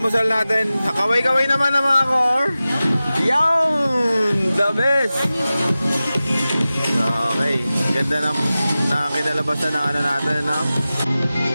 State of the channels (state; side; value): inverted; both; correlation -0.95